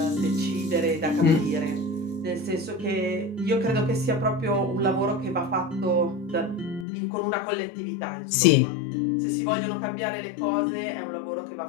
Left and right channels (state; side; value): drops out; right; at 6.9 s